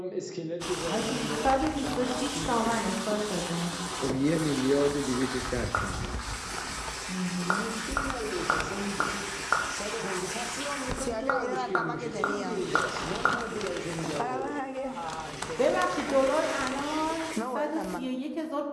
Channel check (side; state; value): both; identical; correlation 1.00